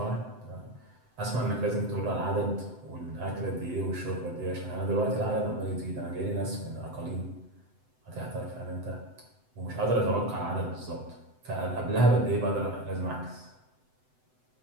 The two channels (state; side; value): late; left; 7.9 ms